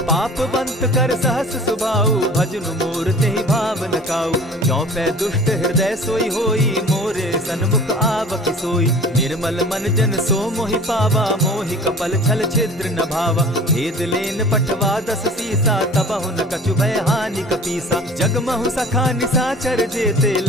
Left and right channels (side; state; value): both; normal; correlation 0.44